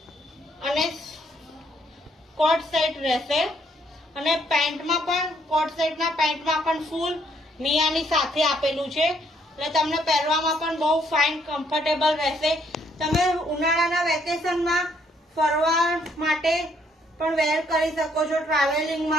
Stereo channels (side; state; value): both; normal; correlation 0.69